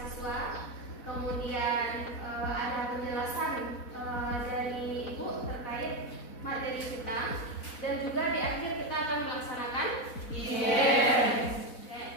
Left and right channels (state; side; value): late; right; 4.0 ms